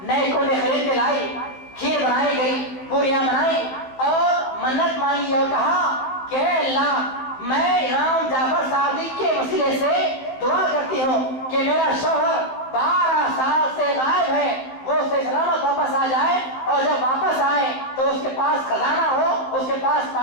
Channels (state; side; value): late; right; 15 ms